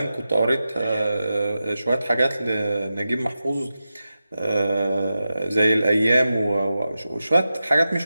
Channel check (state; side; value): inverted; both; correlation -0.92